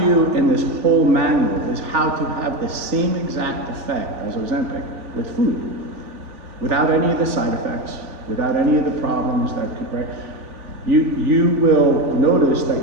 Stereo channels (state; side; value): late; left; 3.4 ms